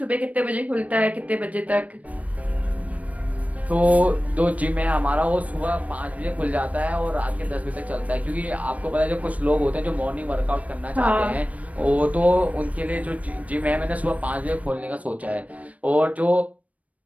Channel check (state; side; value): late; left; 0.068 ms